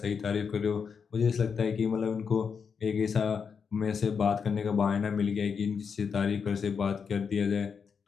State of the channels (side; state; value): right; quieter; 6.2 dB